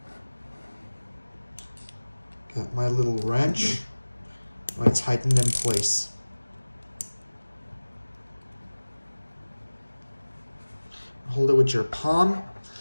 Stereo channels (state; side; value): inverted; both; correlation -1.00